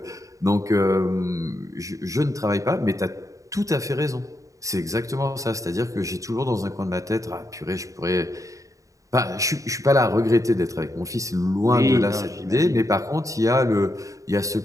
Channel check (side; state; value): left; late; 0.16 ms